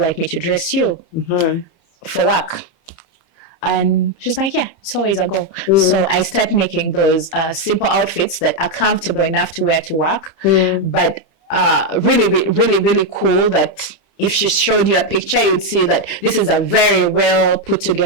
me to dress you for work? And she's like, yeah, it's always a go. So I start making those simple outfits that are comfortable enough to wear to work, but really, really, really cool, that if she showed you a picture, you'd see that this is a very well put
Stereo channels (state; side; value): late; right; 30 ms